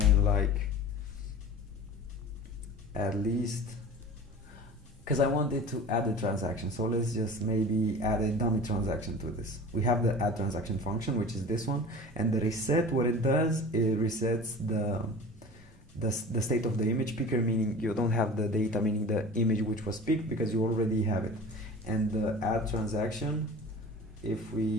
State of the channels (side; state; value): both; normal; correlation 0.38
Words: like at least, because I wanted to add a transaction, so let's just maybe add a dummy transaction to this. We have the add transaction function, which is this one, and the reset, what it does, it resets the state of the image picker, meaning you don't have the data, meaning the image which was picked, because you already have it. And the add transaction, if